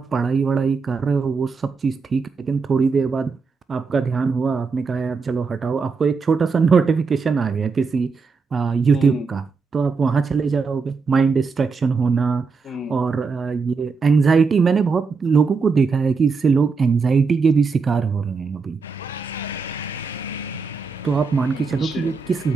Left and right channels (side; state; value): left; quieter; 4.8 dB